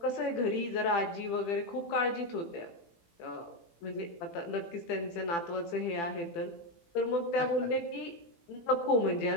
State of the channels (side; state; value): right; late; 18 ms